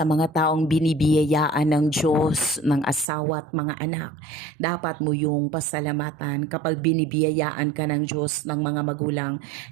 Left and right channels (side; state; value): left; drops out; at 3.1 s